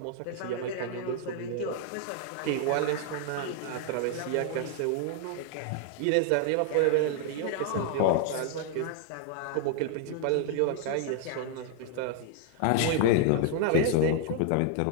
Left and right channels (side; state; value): both; different; correlation 0.00